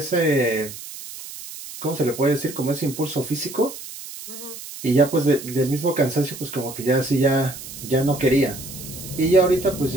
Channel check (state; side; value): noise; right; hiss, 12 dB below the sound